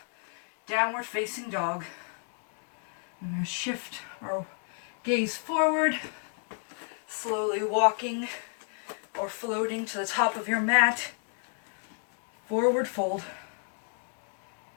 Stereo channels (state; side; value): silent; right; 57 dB below the other